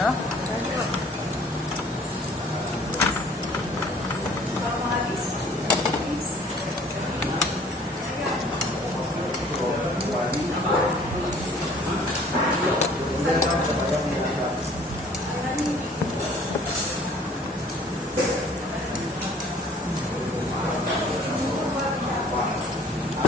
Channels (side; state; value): both; normal; correlation 0.54